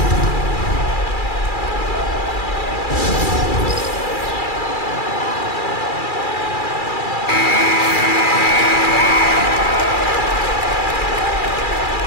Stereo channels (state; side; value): late; right; 2.4 ms